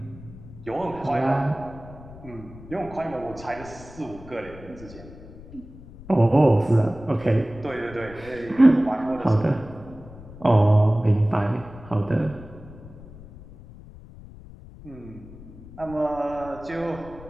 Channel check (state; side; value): noise; left; rumble, 17 dB below the sound